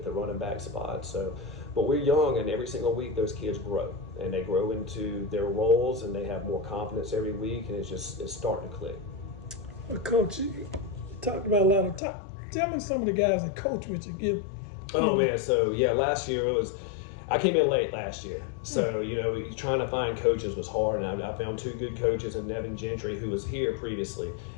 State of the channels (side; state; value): right; drops out; at 12.0 s